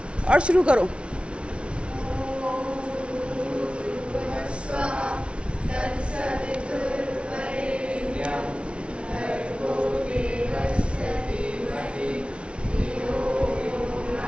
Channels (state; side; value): late; left; 0.059 ms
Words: और शुरू करो।